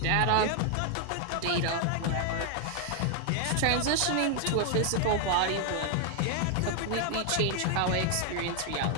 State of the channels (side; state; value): both; different; correlation 0.00